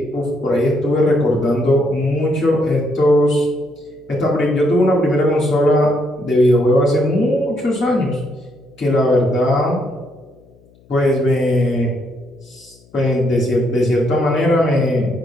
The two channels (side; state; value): left; noise; hum, 30 dB below the sound